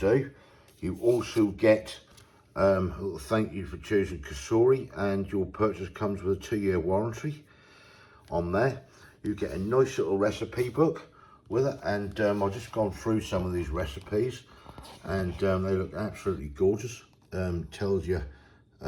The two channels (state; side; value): identical; both; correlation 1.00